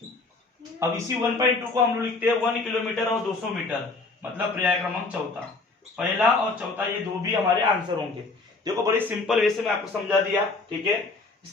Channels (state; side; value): quieter; right; 3.7 dB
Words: अब इसी 1.2 को हम लोग लिखते हैं 1 किलोमीटर और 200 मीटर, मतलब पर्याय क्रमांक चौथा। पहला और चौथा ये दो भी हमारे आंसर होंगे। देखो बड़ी सिंपल वे से मैं आपको समझा दिया, ठीक है। इस